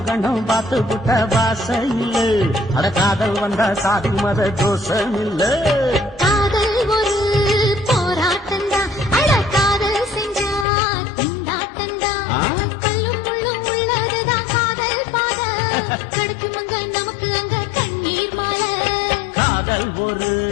கண்ணும் பார்த்து புட்ட வாசையில் அட காதல் வந்த சாதி மத தோஷம் இல்ல காதல் ஒரு போராட்டந்தான் அட காதல் செஞ்சா திண்டாட்டந்தான் கல்லும் முள்ளும் உள்ளதுதான் காதல் பாத கிடைக்குமங்க நமக்கு அங்க கண்ணீர் மாலை காதல் ஒரு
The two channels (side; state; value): right; drops out; at 10.7 s